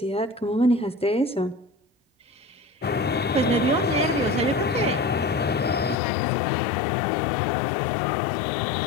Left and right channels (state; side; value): drops out; right; at 6.0 s